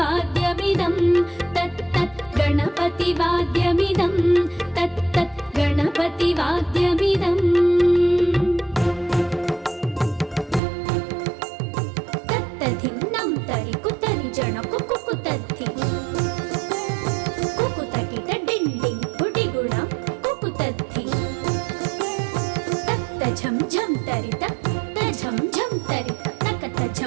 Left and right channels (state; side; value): drops out; left; at 10.6 s